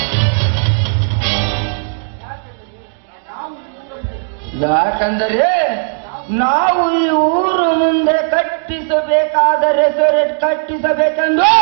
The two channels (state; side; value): silent; left; digital silence